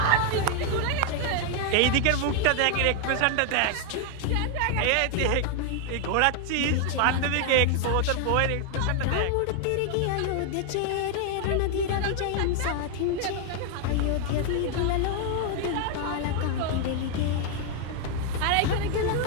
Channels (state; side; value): different; both; correlation 0.00